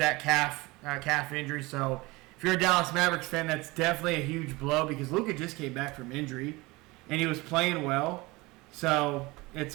calf injury. So, if you're a Dallas Mavericks fan, that's definitely a huge blow because Luka just came back from injury, and he was playing well. So, it's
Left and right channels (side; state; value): left; quieter; 22.6 dB